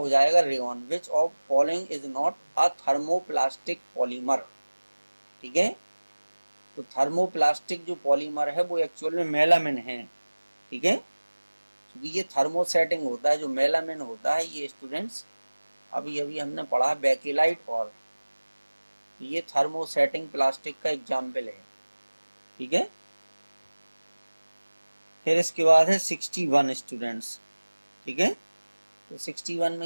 जाएगा rayon. Which of following is not a thermoplastic polymer. ठीक है, तो थर्मोप्लास्टिक जो पॉलीमर है वो एक्चुअल में मेलामिन है। ठीक है, क्योंकि ये थर्मोसेटिंग होता है, जो मेलामिन होता है ये स्टूडेंट्स अभी अभी हमने पढ़ा बेकिलाइट, और ये थर्मोसेटिंग प्लास्टिक का एग्जाम्पल है, ठीक है। फिर इसके बाद है 61 स्टूडेंट्स, ठीक है। तो 61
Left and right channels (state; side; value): inverted; both; correlation -1.00